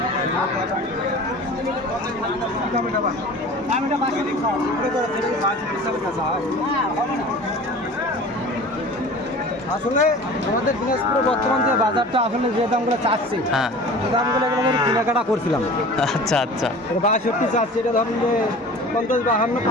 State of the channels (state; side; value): normal; both; correlation 0.40